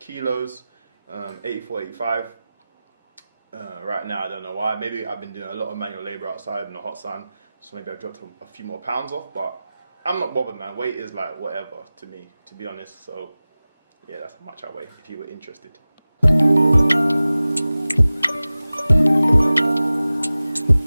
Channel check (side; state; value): both; inverted; correlation -0.97